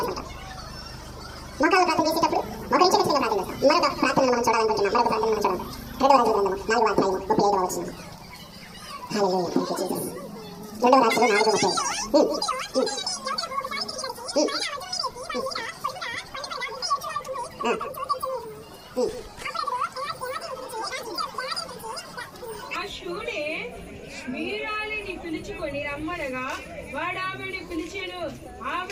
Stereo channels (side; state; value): both; identical; correlation 1.00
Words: మోకాలు ప్రార్థన చేసేటప్పుడు మోకరించి ఖచ్చితంగా ప్రార్థన చేస్తాం. మరొక ప్రార్థనను మనం చూడాలనుకుంటున్నాం. మరొక ప్రార్థన మనం చూడాలి. 2వ రాజుల గ్రంథము 4వ అధ్యాయము 35వ వచనం. హల్లెలూయా, థాంక్యూ జీసస్. 2వ రాజులు 4:30. వీరాలిని పిలుచుకొని రమ్మనగా వాడు ఆమెను పిలిచెను.